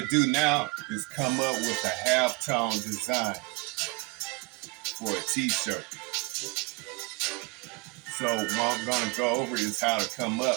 do now is come up with a halftone design for a t-shirt. So what I'm going to go over is how to come up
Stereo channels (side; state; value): left; quieter; 26.9 dB